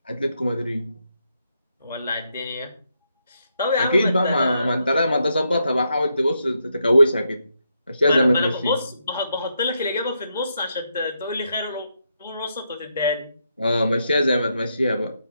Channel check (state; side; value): inverted; both; correlation -0.81